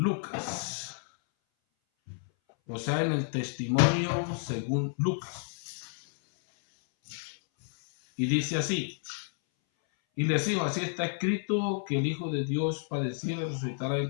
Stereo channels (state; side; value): silent; right; 58 dB below the other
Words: o sea, en el testimonio según Lucas. Y dice así: y les dijo, así está escrito, que el Hijo de Dios padeciera y resucitara